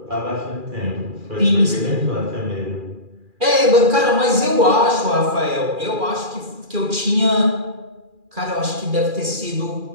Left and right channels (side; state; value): left; late; 2.4 ms